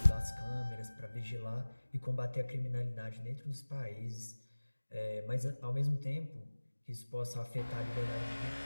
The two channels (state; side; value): inverted; both; correlation -1.00